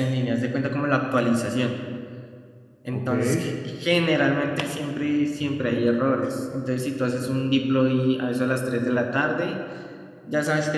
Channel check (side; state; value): both; identical; correlation 1.00